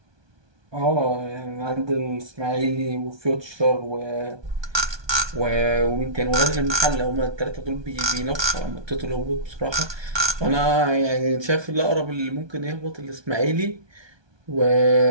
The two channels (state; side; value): late; left; 1.2 ms